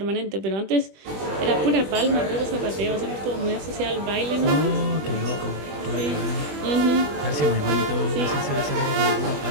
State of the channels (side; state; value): left; late; 20 ms